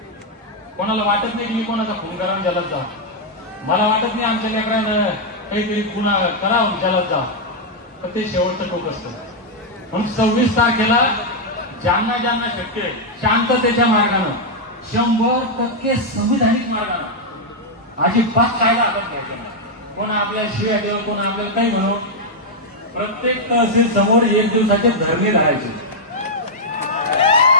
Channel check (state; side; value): normal; both; correlation -0.02